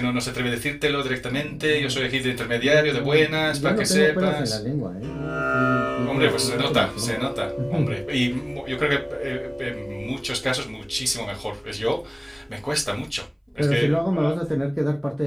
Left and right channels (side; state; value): both; identical; correlation 1.00